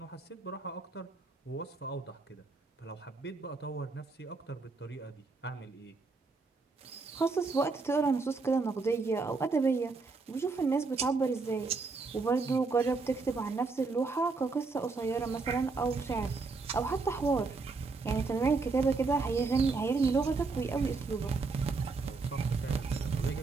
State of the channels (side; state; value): left; quieter; 4.1 dB